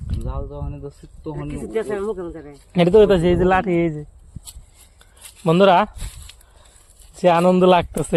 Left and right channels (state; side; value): identical; both; correlation 1.00